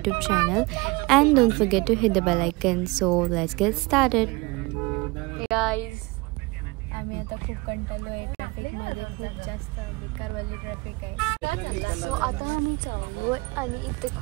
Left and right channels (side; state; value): left; quieter; 24.8 dB